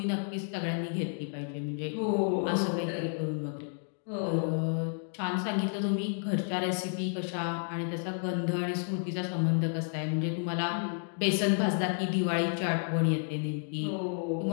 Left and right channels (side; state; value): right; silent; 57 dB below the other